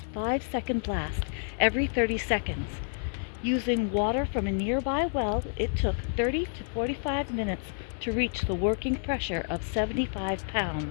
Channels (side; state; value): right; silent; 58 dB below the other